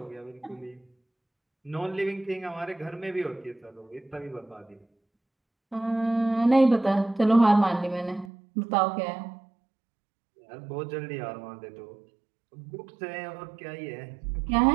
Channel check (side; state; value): left; drops out; at 8.3 s